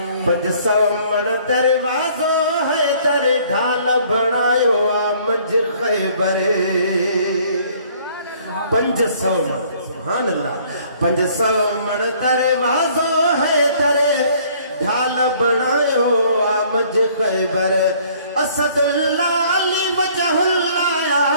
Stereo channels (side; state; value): both; inverted; correlation -0.58